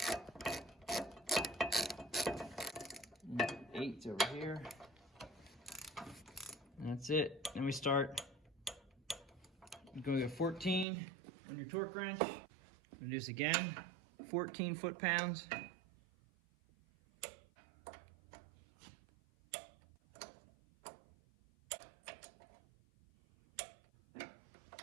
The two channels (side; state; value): left; drops out; at 10.9 s